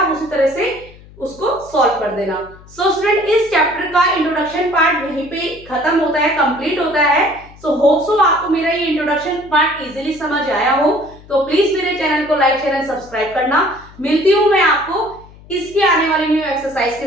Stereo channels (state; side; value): noise; left; hum, 22 dB below the sound